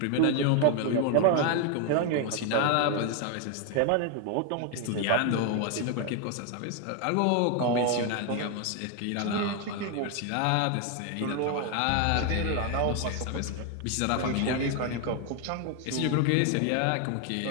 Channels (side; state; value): both; different; correlation 0.01